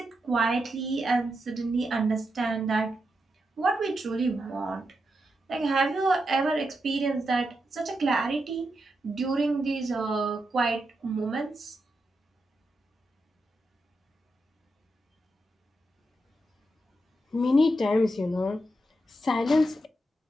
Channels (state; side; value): normal; both; correlation 0.85